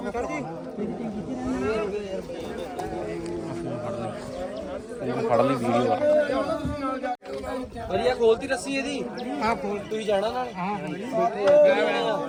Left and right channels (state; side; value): identical; both; correlation 1.00